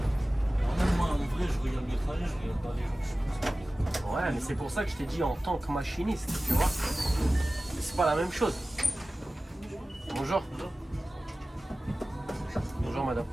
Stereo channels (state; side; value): normal; both; correlation 0.96